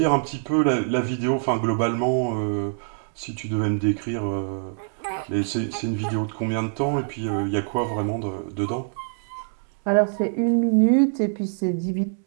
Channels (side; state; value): left; silent; digital silence